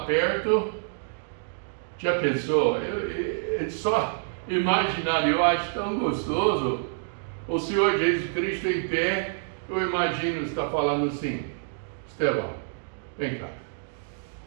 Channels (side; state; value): left; silent; digital silence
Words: Já pensou? Só imaginar, eu acho tão gostoso o Senhor Jesus Cristo em pé. Eu imagino está falando assim: Estevão, vem cá,